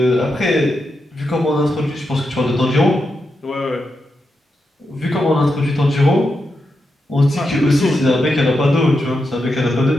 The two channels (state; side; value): normal; both; correlation 0.86